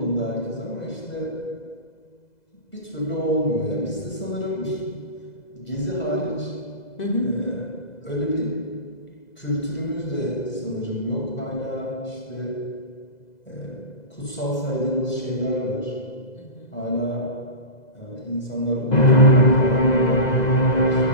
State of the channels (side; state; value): right; late; 2.0 ms